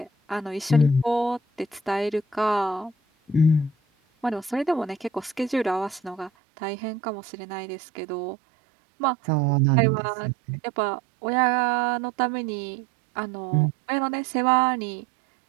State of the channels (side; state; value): left; drops out; at 6.3 s